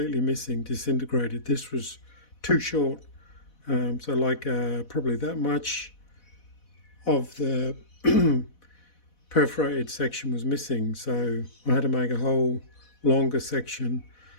missing, disintegrated. This was too short, so like probably that much of the perforated section was missing, so I had to make a whole longer section,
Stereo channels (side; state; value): right; late; 4.1 ms